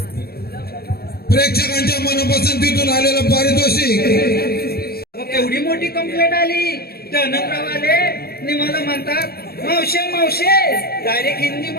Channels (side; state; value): right; late; 0.45 ms